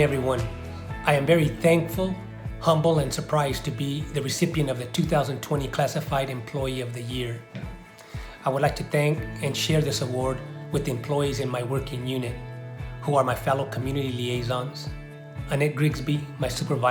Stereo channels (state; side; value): identical; both; correlation 1.00